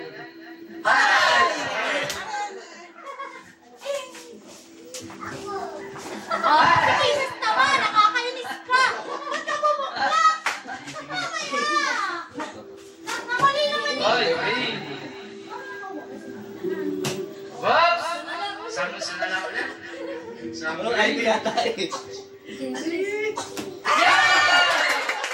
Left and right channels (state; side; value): identical; both; correlation 1.00